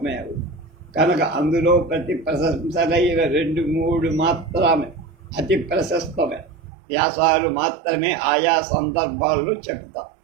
అవుతుంది. కనుక అందులో ప్రతి ప్రశంసలైన 2-3 మాత్రమే అతి ప్రశస్తమే వ్యాసాలు మాత్రమే ఆయా సందర్భాల్లో చెబుతా.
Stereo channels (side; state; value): left; drops out; at 6.5 s